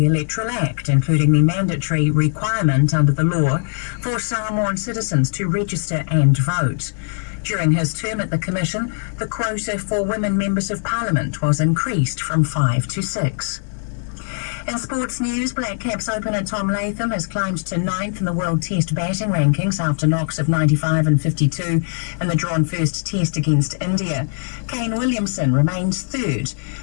Electoral Act, including the mandatory requirement under the law for Samoan citizens to register and vote. During his term at the Commission, the quota for women members of Parliament was increased from 5 to 6. In sports news, Black Caps opener Tom Latham has climbed to 9th in the World Test batting rankings after knocks of 95 and 52 in the drawn first Test against India. Kane Williamson remains 3rd.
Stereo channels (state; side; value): silent; right; 65 dB below the other